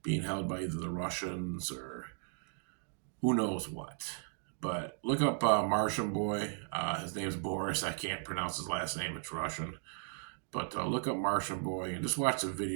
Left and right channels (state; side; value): silent; left; 54 dB below the other